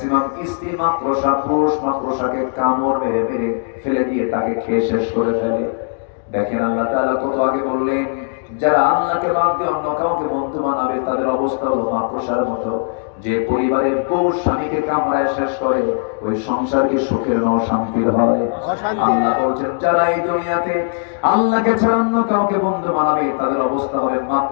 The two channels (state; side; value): silent; right; digital silence